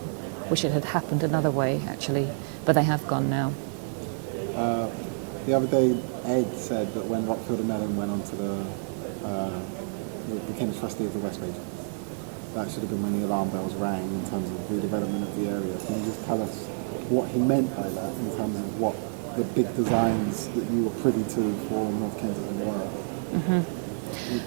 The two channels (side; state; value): left; silent; digital silence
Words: wish it had happened another way, actually. But they have gone now. The other day, Ed said that when Rockfield and Mellon went on to became trustee of the West Region, that should have been when the alarm bells rang in terms of redevelopment of the area. Can you just tell us what he meant by that in terms of what the big designs that you were privy to for North Kensington were?